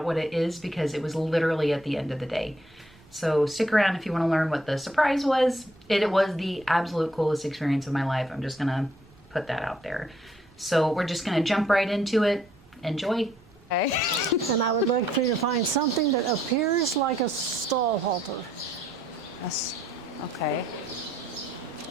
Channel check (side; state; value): right; noise; rumble, 27 dB below the sound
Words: what it is, because it was literally at the end of the day. So stick around if you want to learn what the surprise was. It was the absolute coolest experience of my life. I'm just going to put that out there. So we're just going to jump right into it. Enjoy. Okay. And I would like for you to find something that appears like a stall halter. Yes. Okay.